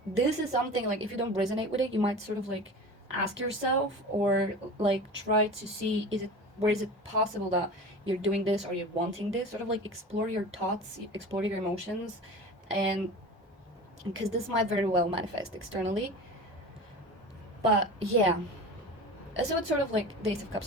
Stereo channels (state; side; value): normal; both; correlation 0.34